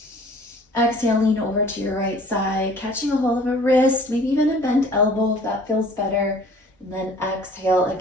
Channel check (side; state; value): both; normal; correlation 0.51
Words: Exhale, lean over to your right side, catching a hold of a wrist, maybe even a bent elbow if that feels better. And then exhale